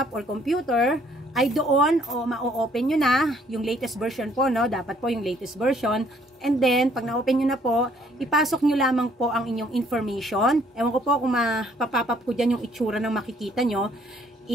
or computer, ay doon ma-open nyo na yung latest version po, no? Dapat po yung latest version. And then, pag na-open nyo na po, ipasok nyo lamang po ang inyong information. Ewan ko po kung mapapap ko dyan yung itsura ng makikita nyo.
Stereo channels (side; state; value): both; normal; correlation 0.63